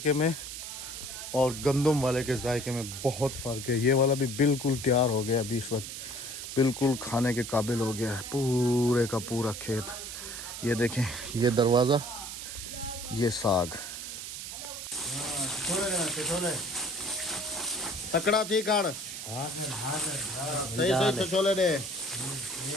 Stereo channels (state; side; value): noise; right; hiss, 8 dB below the sound